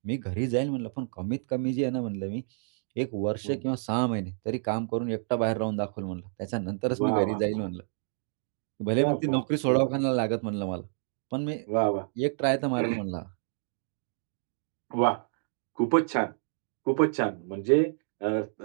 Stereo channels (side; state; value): left; silent; digital silence